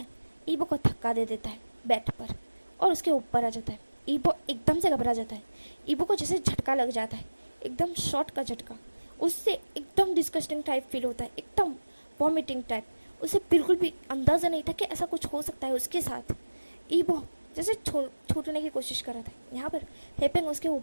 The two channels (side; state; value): both; inverted; correlation -1.00